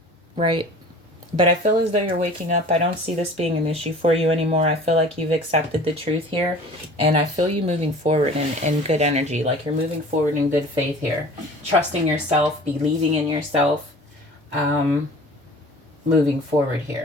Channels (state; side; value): normal; both; correlation 0.44